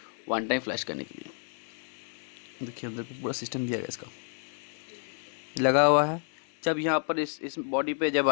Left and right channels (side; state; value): right; silent; 56 dB below the other